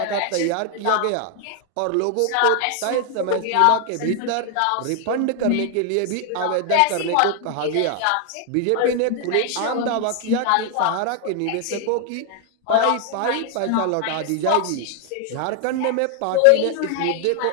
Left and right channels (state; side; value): different; both; correlation 0.00